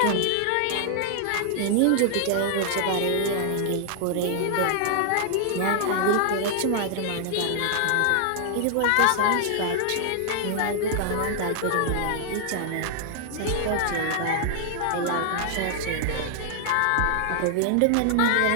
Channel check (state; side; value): different; both; correlation -0.01